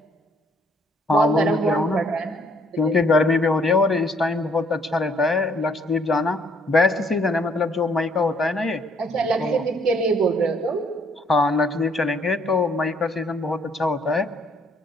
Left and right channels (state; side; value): normal; both; correlation 0.65